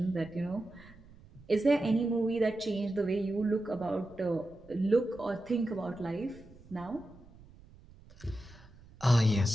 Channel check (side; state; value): right; noise; rumble, 23 dB below the sound